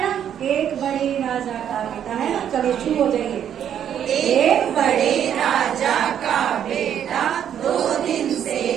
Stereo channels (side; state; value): left; quieter; 9.4 dB